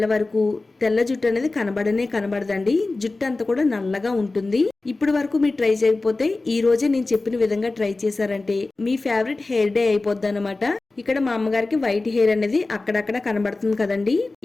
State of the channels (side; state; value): right; quieter; 3.3 dB